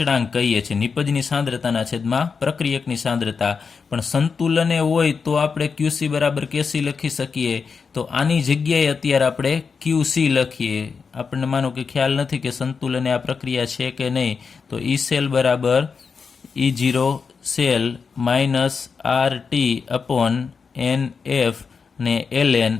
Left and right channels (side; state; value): right; quieter; 5.4 dB